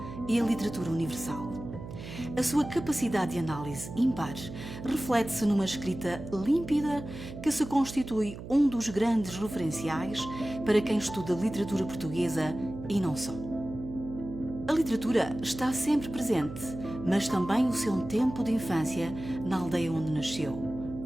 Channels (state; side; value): noise; right; hum, 11 dB below the sound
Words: e a literatura universal. A sua capacidade de análise ímpar reflete-se numa escrita límpida que se constitui um dos grandes referenciais para quem estuda literatura portuguesa e não só. A literatura está sempre presente, mas também o seu tempo de infância na aldeia onde nasceu.